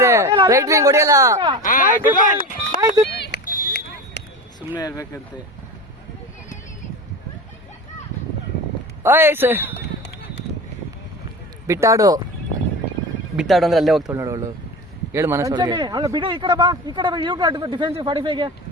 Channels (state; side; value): normal; both; correlation 0.29